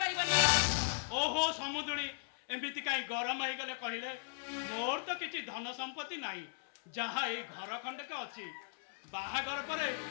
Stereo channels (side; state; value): right; silent; 53 dB below the other